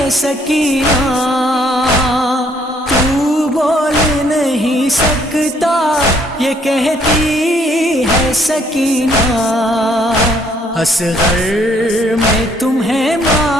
سکینہ، تو بول نہیں سکتا یہ کہتی ہے سکینہ، اصغر میں تمہیں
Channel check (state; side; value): normal; both; correlation 0.66